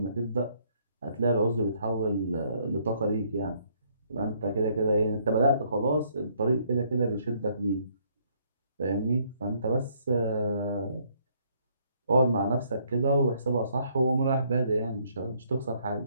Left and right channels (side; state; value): both; inverted; correlation -0.68